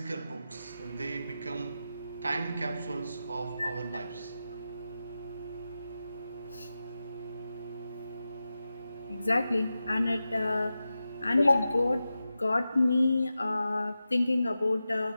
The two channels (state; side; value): inverted; both; correlation -0.92